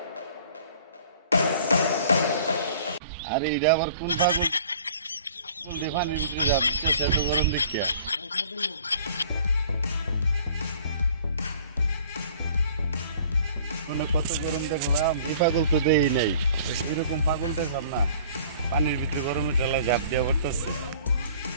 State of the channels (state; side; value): inverted; both; correlation -0.51